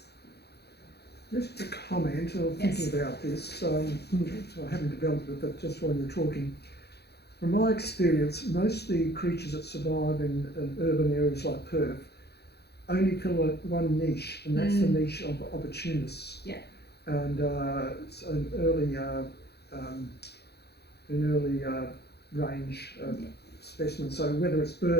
Just a comment of thinking about this, so I haven't developed it, but just while you're talking, from my experience, most of the creatures that survive in urban areas like Perth only fill one niche, and that's the niche of opportunists. Yeah. And it's an early range specimen. So whether it's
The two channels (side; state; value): right; late; 0.48 ms